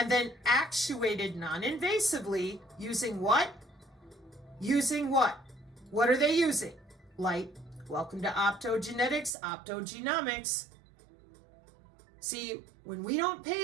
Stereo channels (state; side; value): drops out; left; at 9.3 s